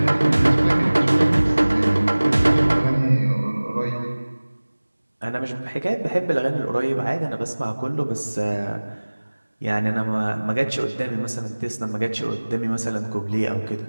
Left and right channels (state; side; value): inverted; both; correlation -1.00